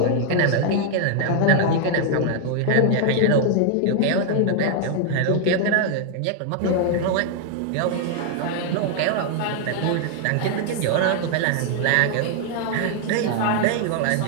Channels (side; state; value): both; different; correlation 0.00